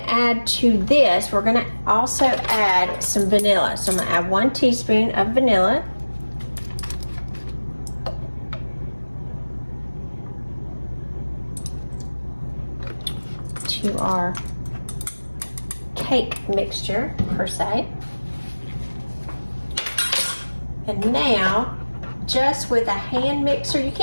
add to this, we're gonna also add some vanilla. So I'm gonna add 1 teaspoon of vanilla. To our cake mixture per se. And now, just with a hand mixer, you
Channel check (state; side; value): inverted; both; correlation -1.00